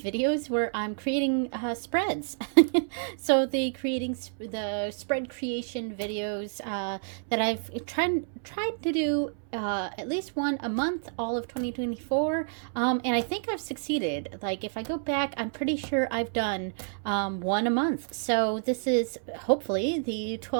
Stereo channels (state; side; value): silent; left; 59 dB below the other